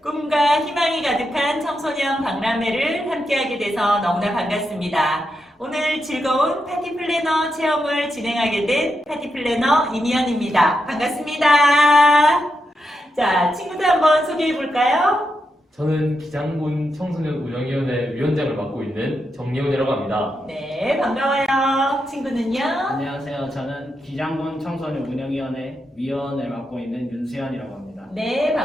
꿈과 희망이 가득한 청소년 박람회를 함께하게 돼서 너무나 반갑습니다. 오늘 즐거운 파티 플래너 체험을 진행하게 된 파티 플래너 이미연입니다. 반갑습니다. 자, 친구들 한번 소개해 볼까요? 저는 기장군 청소년 운영위원회 위원장을 맡고 있는 정예훈이라고 합니다. 네, 반가워요. 친구는요? 안녕하세요. 저는 기장군 청소년 운영위원회 위원을 맡고 있는 윤수현이라고 합니다. 네,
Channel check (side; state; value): both; normal; correlation 0.85